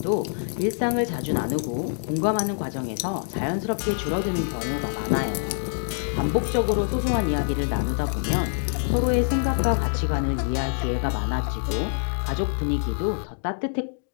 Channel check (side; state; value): right; silent; digital silence